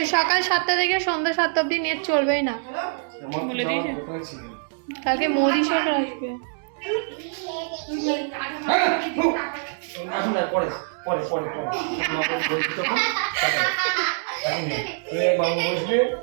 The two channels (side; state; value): left; silent; 62 dB below the other